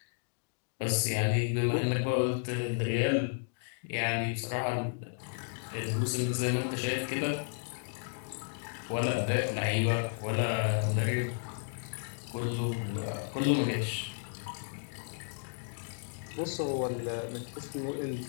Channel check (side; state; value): right; silent; digital silence